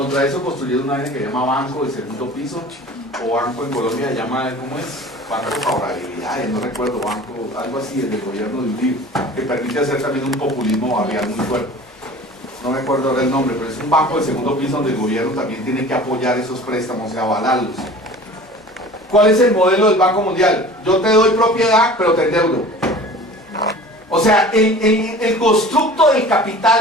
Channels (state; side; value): normal; both; correlation 0.42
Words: eso construyeron una vaina que se llama Banco de Segundo Piso, o Banco en Colombia se llama, ¿cómo es? Banco de Favorabilidades, no recuerdo, banco, algo así, del gobierno de Uribe, que permite hacer también un populismo barrial muy fuerte. No me acuerdo ahora el nombre, pero es un banco de segundo piso donde el gobierno también tiene que apoyar esos préstamos y avalarlos. ¿Cuál es el modelo del Banco Mundial? Yo te doy propiedad, pero te endeudo. O sea, el constructo del